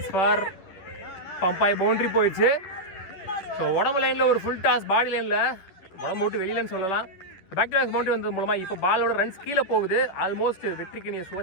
for Bombay boundary போயிடுச்சு. ஸோ உடம்பு லைனில் ஒரு ஃபுல் டாஸ், பாடி லைனில் உடம்பு விட்டு வெளியிலன்னு சொல்லலாம். பேக் டு பேக் பவுண்ட்ரி வந்தது மூலமாக இப்போ பாலோட ரன்ஸ் கீழே போகுது. ஆல்மோஸ்ட் வெற்றிக்கு நீ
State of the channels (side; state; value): right; late; 10 ms